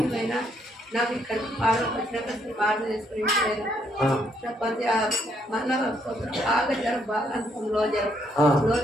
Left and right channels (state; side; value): normal; both; correlation 0.72